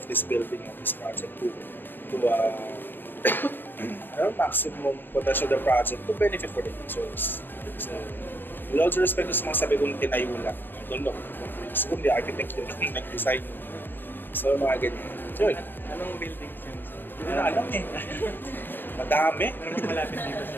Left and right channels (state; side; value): late; right; 0.096 ms